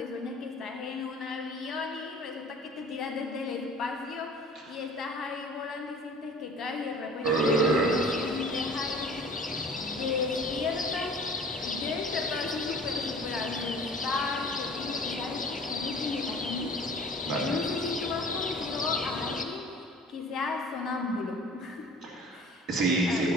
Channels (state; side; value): normal; both; correlation 0.46